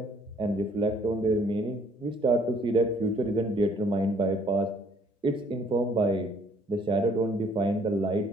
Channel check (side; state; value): both; normal; correlation 0.61